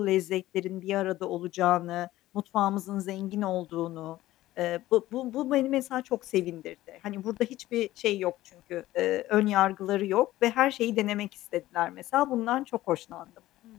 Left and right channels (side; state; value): right; quieter; 15.8 dB